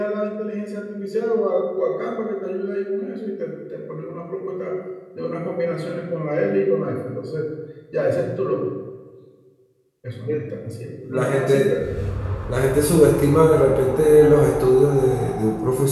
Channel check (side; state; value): both; identical; correlation 1.00